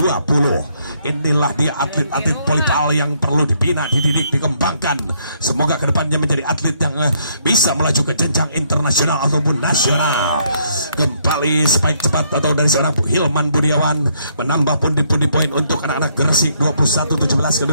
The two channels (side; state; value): both; inverted; correlation -0.70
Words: Inilah dia atlet-atlet volleyball yang perlu dibina, dididik, dikembangkan. Semoga kedepannya menjadi atlet yang bisa melaju ke jenjang internasional ataupun nasional. Kembali spike cepat atau dari seorang Hilman Budiawan, menambah pundi-pundi poin untuk anak-anak Gersik. 21-17